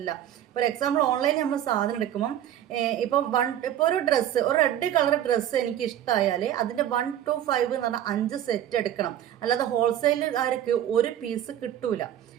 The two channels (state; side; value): quieter; left; 11.2 dB